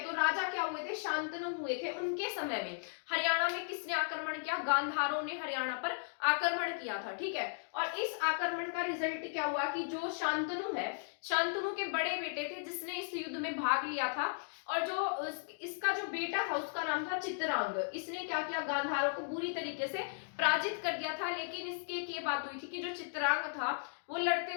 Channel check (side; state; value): right; silent; digital silence